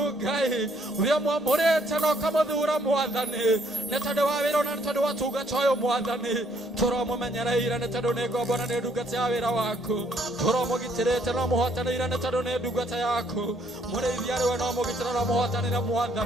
uria mwamurite no kamuthura mwathani ni tondu wa wira na ni tondu wa tungata uyu mwathani turamumenyereire ni tondu ni ngombe na ni ndungata ya wira waku turamugitirite no muhotanire ni tondu ni ndungata yaku murithia riwe no mugitira no muhotanire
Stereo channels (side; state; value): both; normal; correlation 0.67